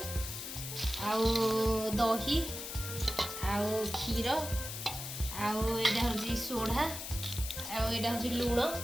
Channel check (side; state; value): left; noise; hiss, 7 dB below the sound